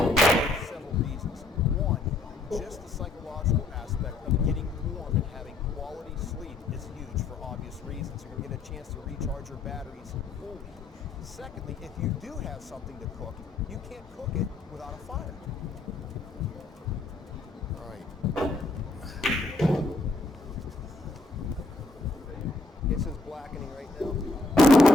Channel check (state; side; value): quieter; right; 3.1 dB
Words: for several reasons. One, just the psychological aspect of getting warm and having quality sleep is huge for obvious reasons. You're going to get a chance to recharge your batteries fully. Secondly, if you do have something to cook, you can't cook it without a fire. All right. It's just blackening right now.